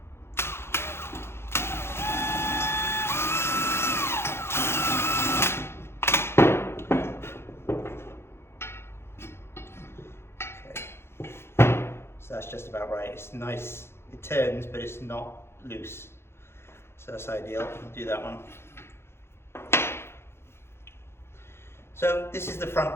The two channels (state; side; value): late; right; 0.12 ms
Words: So that's just about right. It's nice, it turns, but it's not loose. So that's ideal. I'll do that one. So this is the front